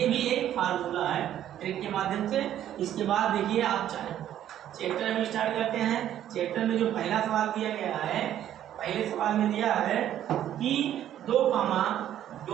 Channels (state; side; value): quieter; left; 11.3 dB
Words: भी एक फार्मूला है ट्रिक के माध्यम से। इसके बाद देखिए आप चाहे चैप्टर में स्टार्ट करते हैं। चैप्टर में जो पहला सवाल दिया गया है, पहले सवाल में दिया है कि 2, 7,